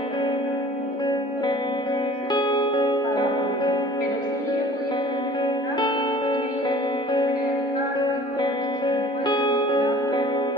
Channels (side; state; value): both; normal; correlation 0.47